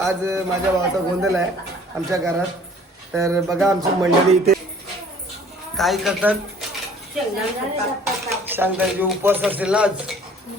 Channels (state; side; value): normal; both; correlation 0.53